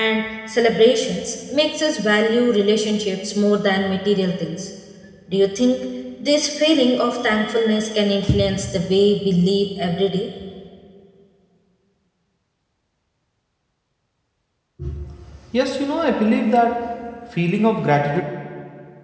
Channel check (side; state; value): both; identical; correlation 1.00